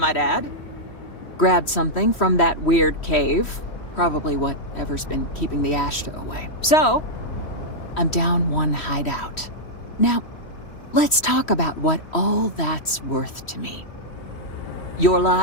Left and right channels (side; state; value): right; late; 3.1 ms